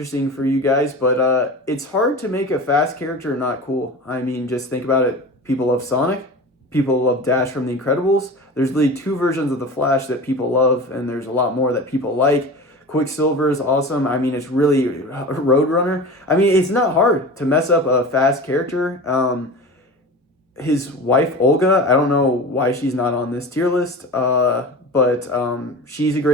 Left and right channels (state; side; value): normal; both; correlation 0.32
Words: for you guys, but it's hard to make a fast character not cool. I mean, just think about it. People love Sonic. People love Dash from The Incredibles. There's really two versions of the Flash that people love, and there's a lot more that people like. Quicksilver is awesome. I mean, it's really Roadrunner. I mean, it's not hard to mess up a fast character. His wife, Olga, I don't know why she's not on this tier list, but she's a